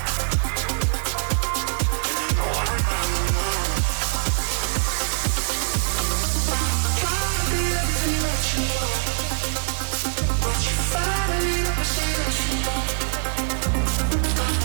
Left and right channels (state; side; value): silent; left; digital silence